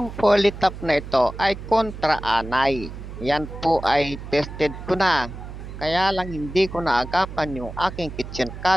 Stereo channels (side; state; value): right; noise; hum, 11 dB below the sound